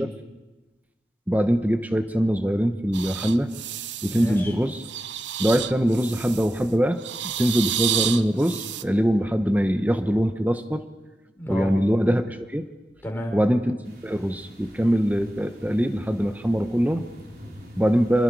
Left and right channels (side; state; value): both; normal; correlation 0.91